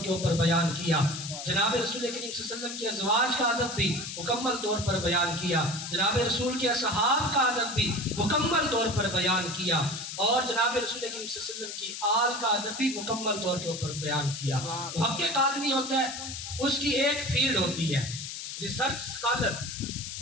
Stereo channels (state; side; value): noise; left; hiss, 7 dB below the sound